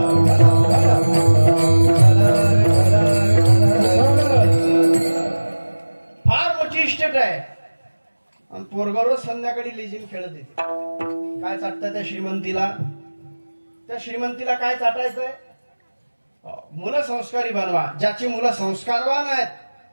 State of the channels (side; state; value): both; inverted; correlation -1.00